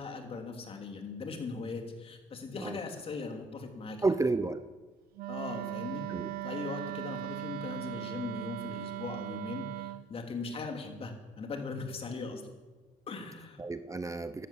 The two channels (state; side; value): normal; both; correlation 0.57